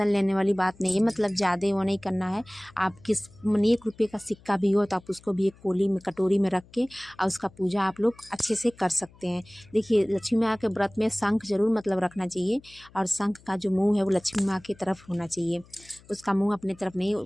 लेने वाली बात नहीं है। ज़्यादा वो नहीं करना है। आप किस 1 रुपये का सिक्का भी हो तो आप उसको भी एक कोली में, कटोरी में रख के और उसका पूजा आप लोग अच्छे से कर सकते हैं। देखिए लक्ष्मी माँ के व्रत में शंख जरूर रखना चाहिए, और शंख का जो मुँह है वो लक्ष्मी माँ की तरफ होना चाहिए, उसका मुँह अपने तरफ नहीं।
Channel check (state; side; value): noise; left; hum, 26 dB below the sound